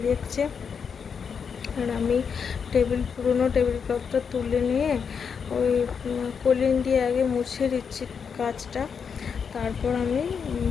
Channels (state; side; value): quieter; right; 6.4 dB